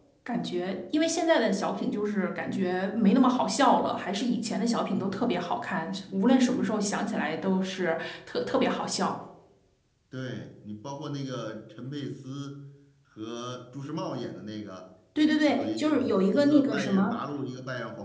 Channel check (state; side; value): identical; both; correlation 1.00